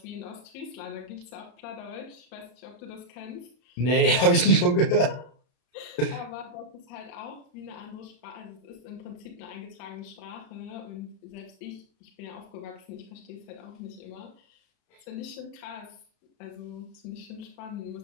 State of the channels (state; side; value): late; right; 33 ms